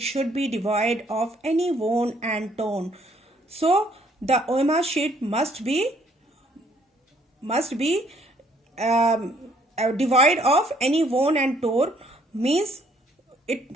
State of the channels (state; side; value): normal; both; correlation 0.65